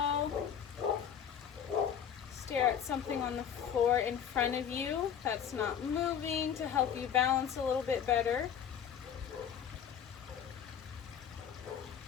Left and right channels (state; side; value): quieter; right; 8.3 dB